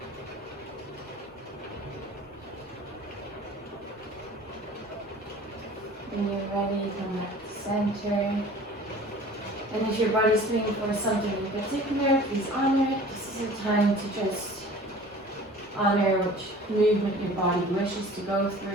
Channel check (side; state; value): both; normal; correlation 0.45